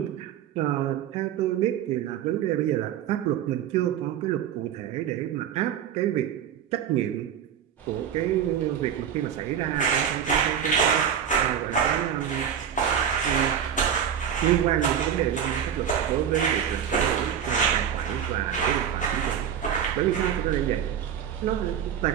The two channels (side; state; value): left; quieter; 8.9 dB